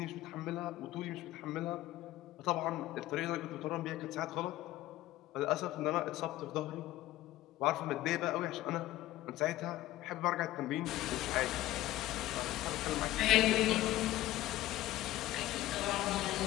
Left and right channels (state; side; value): quieter; right; 15.5 dB